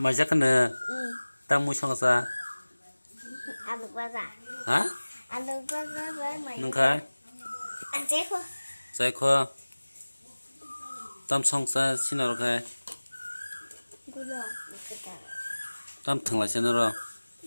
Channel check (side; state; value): both; inverted; correlation -1.00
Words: chắc nữa. Tao mua xong sao? Ăn được bao giờ? Hả? Ăn được bao giờ với mày? Nâng khai. Ăn chết không? Giải khoa. Tao xong sao xin nào khai? Cô đồ. Tao thằng lại xin nào rồi?